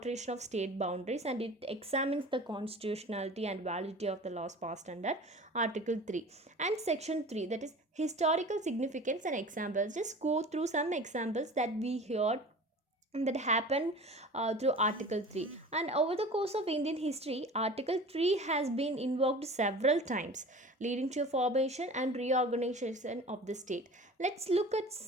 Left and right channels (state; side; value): normal; both; correlation 0.39